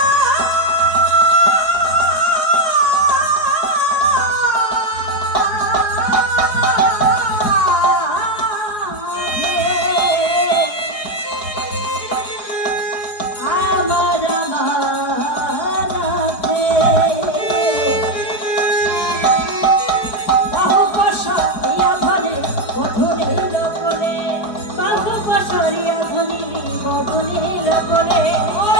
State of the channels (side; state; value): right; late; 4.8 ms